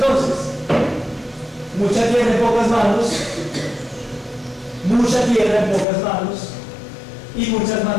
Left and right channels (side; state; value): right; drops out; at 5.9 s